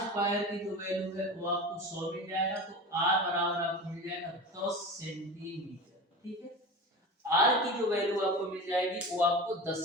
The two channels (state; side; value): normal; both; correlation 0.30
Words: की जो वैल्यू है वो आपको 100 मिल जाएगा, तो आर बराबर आपको मिल जाएगा 10 सेंटीमीटर। ठीक है, आर की जो वैल्यू आपको मिल जाएगी वो आपको 10